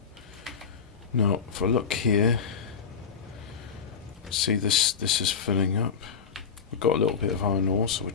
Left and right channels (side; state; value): right; quieter; 6.2 dB